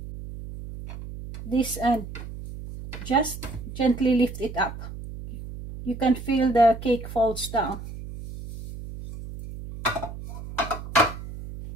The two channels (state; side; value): noise; right; hum, 11 dB below the sound